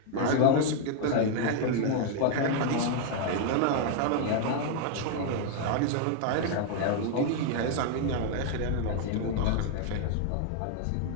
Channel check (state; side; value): different; both; correlation 0.00